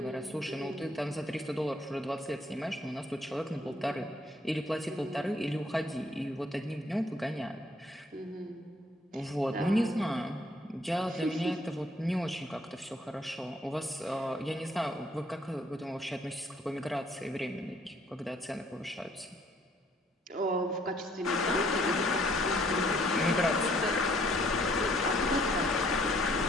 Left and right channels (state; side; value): normal; both; correlation 0.64